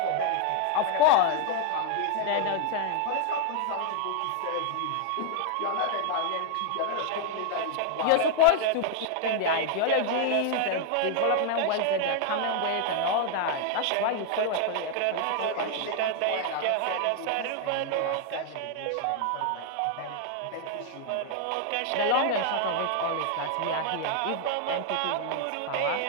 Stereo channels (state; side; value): different; both; correlation 0.00